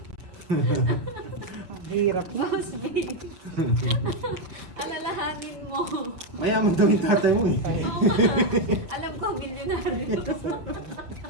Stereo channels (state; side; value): late; left; 6.0 ms